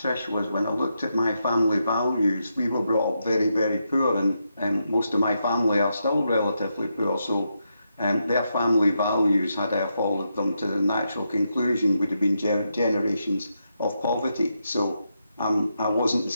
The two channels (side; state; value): both; inverted; correlation -0.83